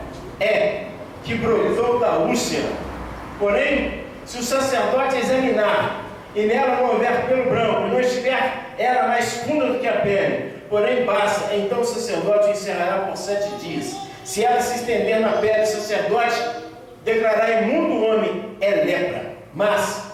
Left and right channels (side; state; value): both; identical; correlation 1.00